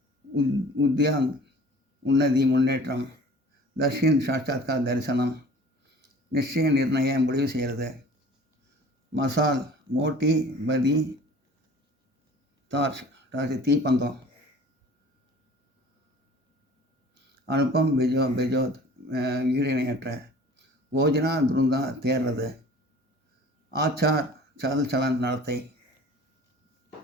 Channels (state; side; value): normal; both; correlation 0.46